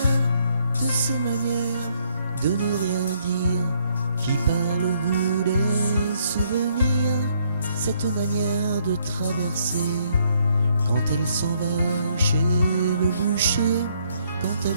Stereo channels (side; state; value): both; inverted; correlation -0.70